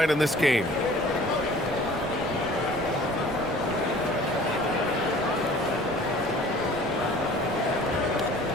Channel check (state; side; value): normal; both; correlation 0.49